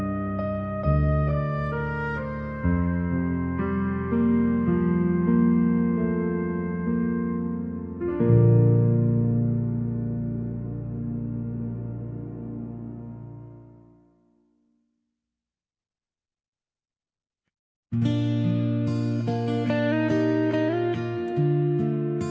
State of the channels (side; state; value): both; identical; correlation 1.00